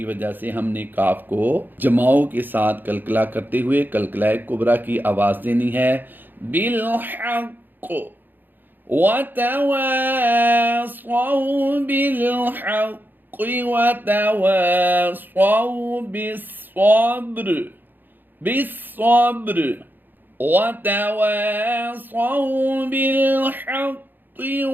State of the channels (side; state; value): left; late; 0.090 ms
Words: وجہ سے ہم نے کاف کو جماؤں کے ساتھ کلکلا کرتے ہوئے کلکلہ کبریٰ کی آواز دینی ہے۔ بالحق وتواصوا بالحق وتواصوا بالصبر بالصبر وتواصوا بالحق